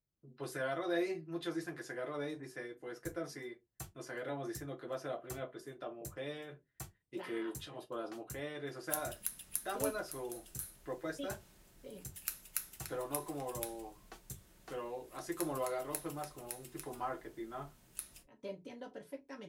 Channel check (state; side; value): identical; both; correlation 1.00